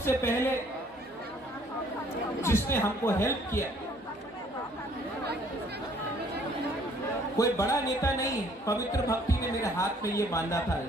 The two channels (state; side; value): normal; both; correlation 0.60